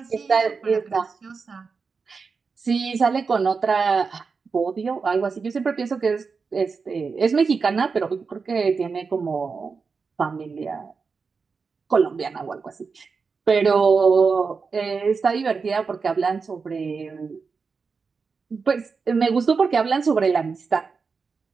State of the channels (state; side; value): quieter; left; 5.0 dB